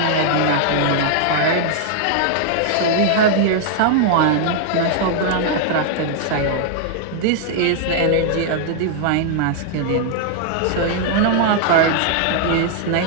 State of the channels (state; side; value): different; both; correlation 0.00